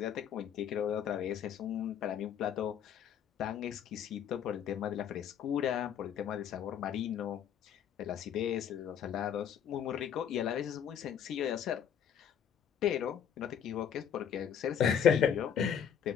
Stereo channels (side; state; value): right; quieter; 8.5 dB